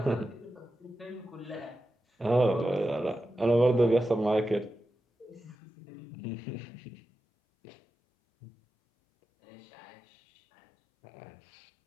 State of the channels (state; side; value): drops out; right; at 5.6 s